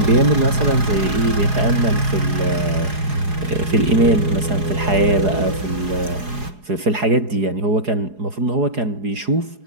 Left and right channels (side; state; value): left; late; 4.8 ms